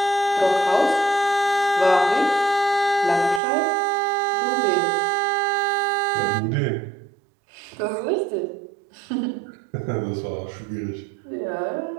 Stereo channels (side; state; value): left; drops out; at 3.4 s